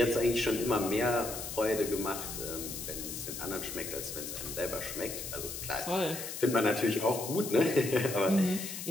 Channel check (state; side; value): noise; left; hiss, 7 dB below the sound